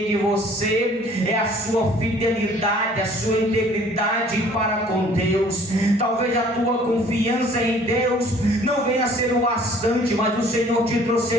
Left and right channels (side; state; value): both; normal; correlation 0.54